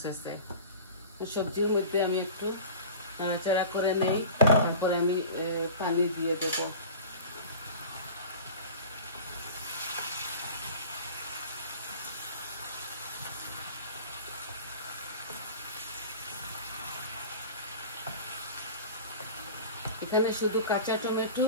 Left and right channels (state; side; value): inverted; both; correlation -0.38